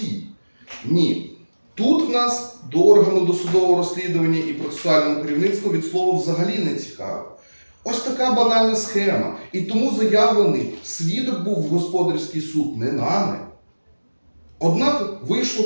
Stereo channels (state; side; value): inverted; both; correlation -1.00